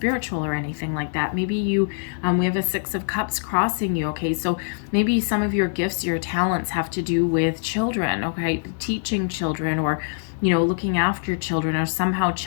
or anything like that. Maybe you, we have a Six of Cups crossing you. Okay, so maybe some of your gifts, your talents have to do with children. Okay, teaching children, or you know, looking after children, or somehow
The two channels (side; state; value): right; silent; digital silence